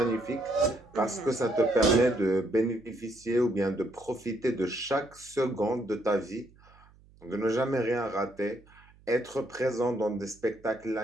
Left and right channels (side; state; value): right; noise; hum, 27 dB below the sound